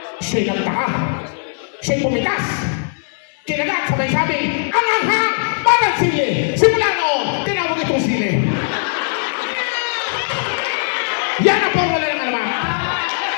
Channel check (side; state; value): right; silent; 57 dB below the other